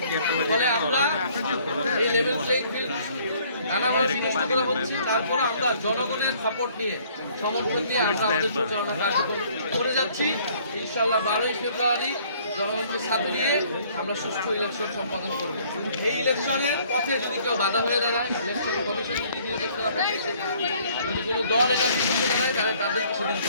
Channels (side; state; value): both; inverted; correlation -0.60